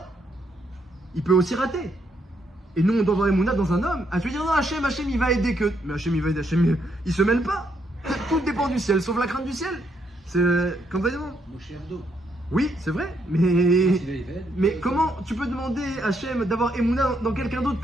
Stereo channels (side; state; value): both; normal; correlation 0.75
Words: Il peut aussi rater. Et nous, on doit avoir Emouna dans un homme. Ah, tu veux dire, non, Hachem, il va aider que. Mais Hachem, il va aider, Hachem, il se mêle pas. Tout dépend du ciel, sauf la crainte du ciel. C'est comme ça, Moshe Abdo. oui, c'est vrai, mais comment tu peux demander à Hachem d'avoir Emouna dans quelqu'un d'autre